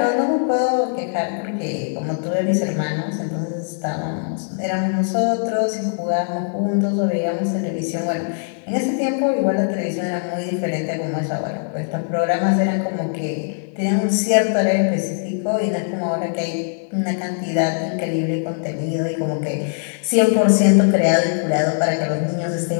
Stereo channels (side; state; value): right; silent; 55 dB below the other